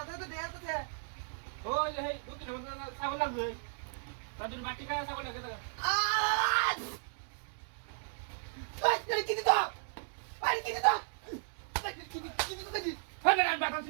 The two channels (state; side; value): silent; left; digital silence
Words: তো দেয়া তো দে ওই যে এই দক্ষিণ আমাদের ছাগল লাগবে তার জন্য বাটি খায় ছাগল লাগে দেখা আই কি দিত আই কি দিত কি দিত দেখি হ্যাঁ না বাটা